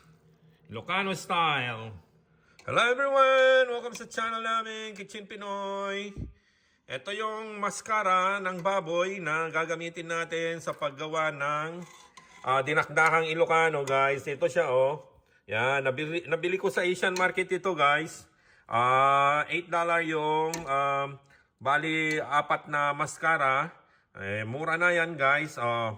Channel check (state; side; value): identical; both; correlation 1.00